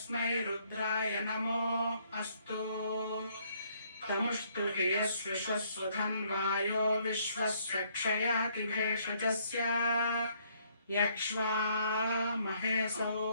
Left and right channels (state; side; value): inverted; both; correlation -0.68